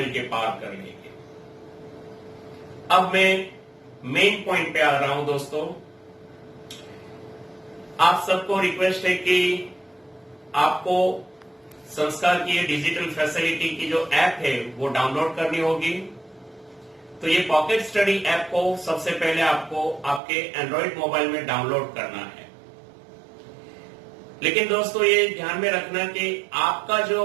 पार कर लेंगे. अब मैं मेन पॉइंट पे आ रहा हूं. दोस्तों, आप सबको रिक्वेस्ट है कि आपको संस्कार की ये डिजिटल फैसिलिटी की जो ऐप है वो डाउनलोड करनी होगी। तो ये पॉकेट स्टडी ऐप को सबसे पहले आपको आपके एंड्रॉइड मोबाइल में डाउनलोड करना है। लेकिन दोस्तों ये ध्यान में रखना कि आपका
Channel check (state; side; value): drops out; left; at 20.2 s